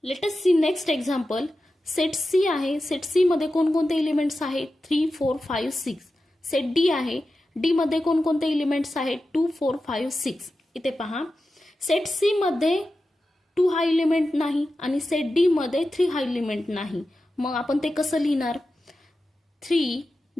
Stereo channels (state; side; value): normal; both; correlation 0.92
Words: Let us see next example. Set C आहे, सेट सी मध्ये कोणकोणते एलिमेंट्स आहेत, 3 4 5 6। सेट डी आहे, डी मध्ये कोणकोणते एलिमेंट्स आहेत, 2 4 5 6। इथे पहा सेट सी मध्ये 2 हा एलिमेंट नाही आणि सेट डी मध्ये 3 हा एलिमेंट नाही, मग आपण ते कसं लिहिणार, 3